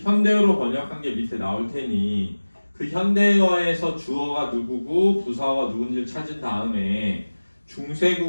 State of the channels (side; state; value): both; inverted; correlation -1.00